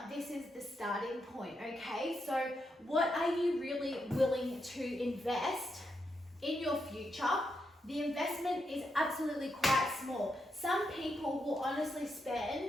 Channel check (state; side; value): normal; both; correlation 0.83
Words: this is the starting point, okay? So what are you really willing to invest in your future? The investment is absolutely quite small. Some people will honestly